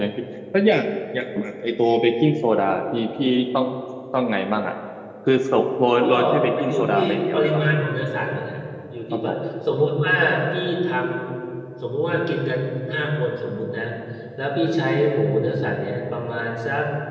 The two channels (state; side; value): identical; both; correlation 1.00